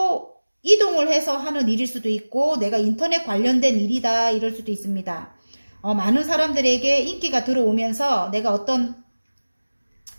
이동을 해서 하는 일일 수도 있고 내가 인터넷 관련된 일이다 이럴 수도 있습니다. 많은 사람들에게 인기가 들어오면서 내가 어떤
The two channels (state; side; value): inverted; both; correlation -1.00